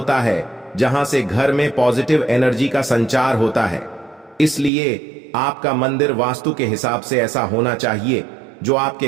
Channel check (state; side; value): drops out; left; at 4.7 s